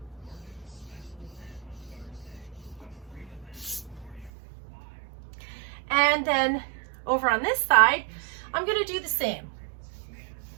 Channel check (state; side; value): drops out; left; at 4.3 s